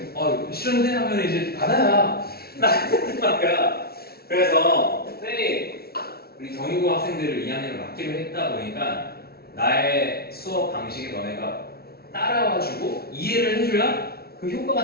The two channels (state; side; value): late; right; 0.45 ms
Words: 싫은데 하면 이제 받아야 나 같은 말이야. 그래서 쌤이 우리 경희고 학생들을 2학년을 맡기로 했다 보니까 나의 수업 방식에 너네가 따라와주고 이해를 해줘야 그